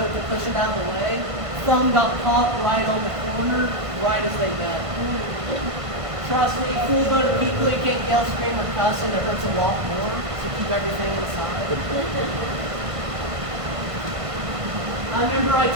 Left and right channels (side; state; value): left; late; 1.5 ms